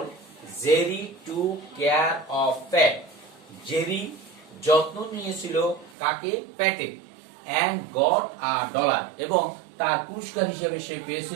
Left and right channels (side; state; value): left; drops out; at 6.0 s